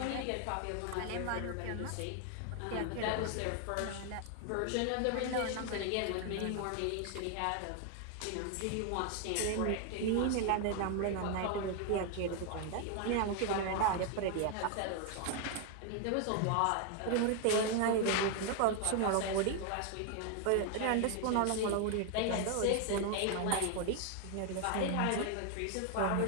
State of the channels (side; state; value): both; different; correlation 0.01